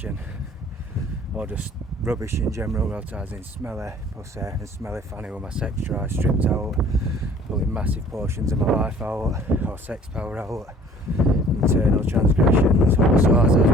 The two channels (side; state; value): both; normal; correlation 0.53